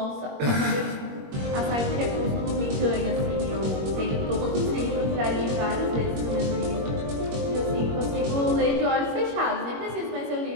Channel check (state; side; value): late; left; 21 ms